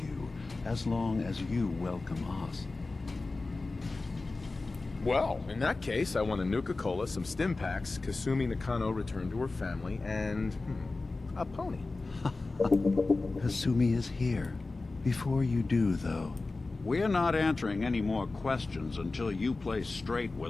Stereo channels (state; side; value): quieter; right; 3.5 dB